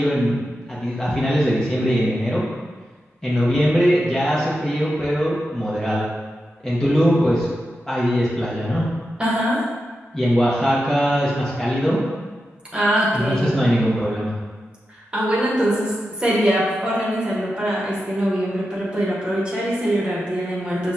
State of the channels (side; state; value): both; normal; correlation 0.89